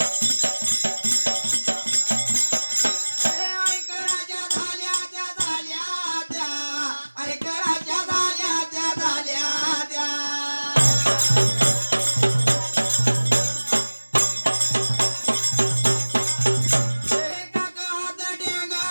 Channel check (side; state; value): both; inverted; correlation -1.00